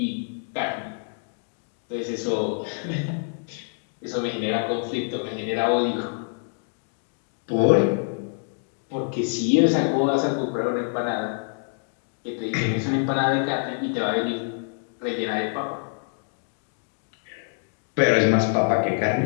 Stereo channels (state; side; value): silent; right; 61 dB below the other